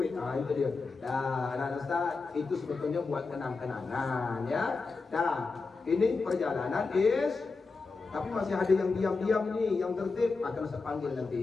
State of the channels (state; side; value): quieter; right; 4.2 dB